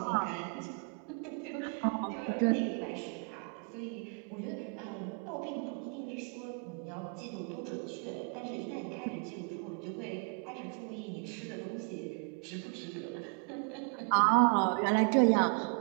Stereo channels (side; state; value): left; quieter; 37.7 dB